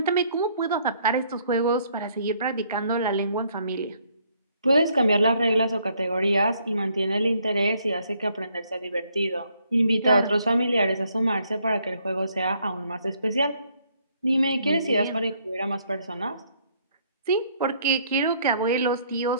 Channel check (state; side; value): inverted; both; correlation -0.68